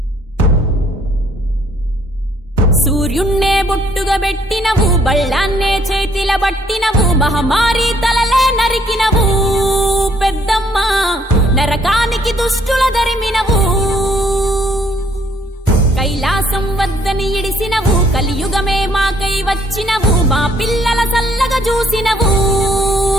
సూర్యున్నే బొట్టుగా పెట్టినవు బళ్ళాన్నే చేతిల బట్టినవు మహమారి తలలే నరికినవు పెద్దమ్మ నరకానికి దుష్టుల దరిమినవు కైలాసం వద్దని ఇడిసినవు కలియుగమే మాకై వచ్చినవు మా పిల్లల సల్లగా చూసినవు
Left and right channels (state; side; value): normal; both; correlation 0.65